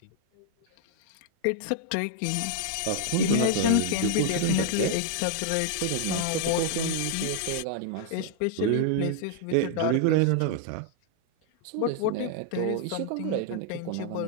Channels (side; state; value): both; different; correlation -0.01